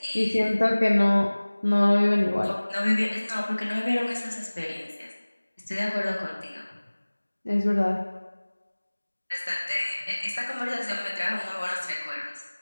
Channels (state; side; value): inverted; both; correlation -1.00